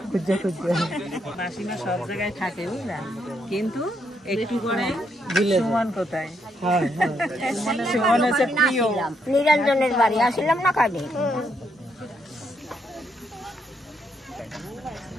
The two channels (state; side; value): normal; both; correlation 0.76